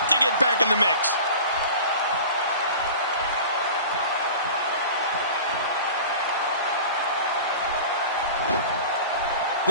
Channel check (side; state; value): both; inverted; correlation -0.38